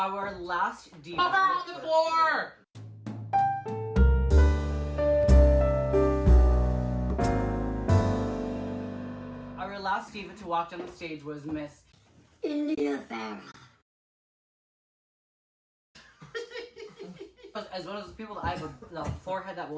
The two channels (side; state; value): both; identical; correlation 1.00